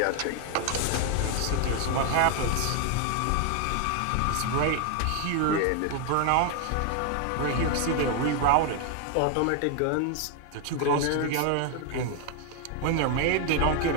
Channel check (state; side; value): different; both; correlation 0.00